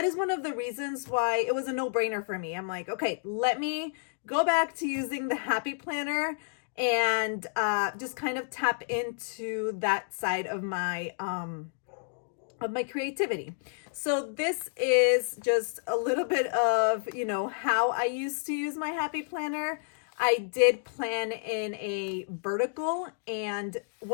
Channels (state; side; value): silent; right; digital silence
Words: one of the reasons why it was a no-brainer for me. I'm like, okay, let me go back to using the Happy Planner and just kind of tap into that side of my creativity. So this is just a little bit of, how I used to use my Happy Planner. I did plan in a vertical, and